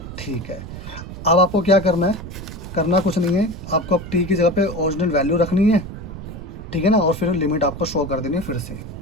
ठीक है। अब आपको क्या करना है, करना कुछ नहीं है, आपको अब टी की जगह पे ओरिजिनल वैल्यू रखनी है, ठीक है ना, और फिर लिमिट आपको शो कर देनी है फिर से।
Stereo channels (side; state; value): right; noise; rumble, 11 dB below the sound